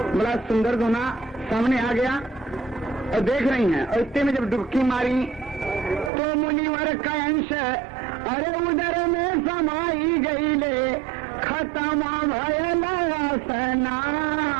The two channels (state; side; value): drops out; left; at 6.1 s